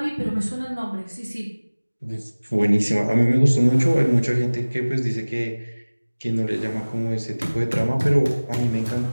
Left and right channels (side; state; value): both; inverted; correlation -1.00